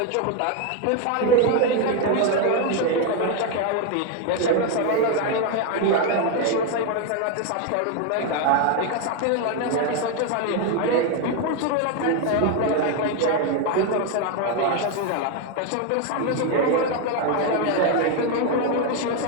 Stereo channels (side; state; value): both; different; correlation 0.01